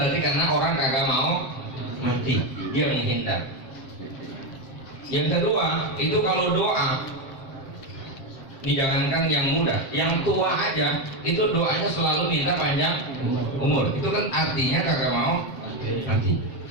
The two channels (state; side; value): late; right; 7.5 ms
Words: karena orang kagak mau mati, dia menghindar. Yang kedua, itu kalau doa, ini jangankan yang muda, yang tua aja, itu doanya selalu minta panjang umur. Itu kan artinya kagak mau mati.